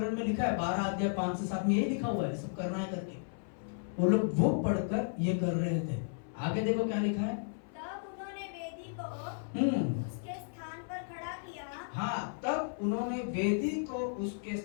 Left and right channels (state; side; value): silent; right; 55 dB below the other